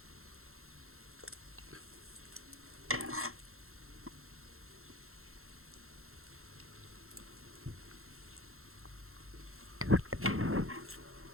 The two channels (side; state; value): left; late; 0.62 ms